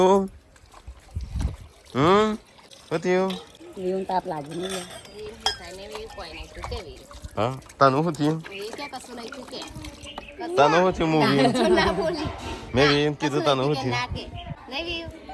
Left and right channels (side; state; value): both; identical; correlation 1.00